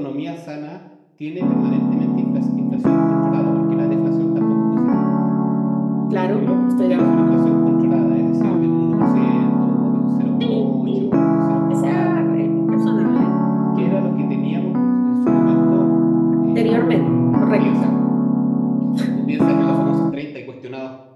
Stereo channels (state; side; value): identical; both; correlation 1.00